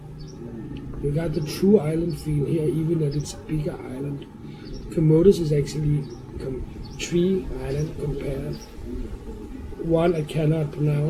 You got the true island feel here, even that it's a bigger island. Camotes is actually three islands compared. One I cannot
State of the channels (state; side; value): identical; both; correlation 1.00